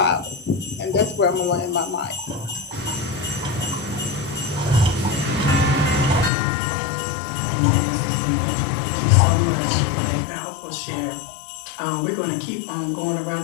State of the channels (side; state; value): right; drops out; at 6.3 s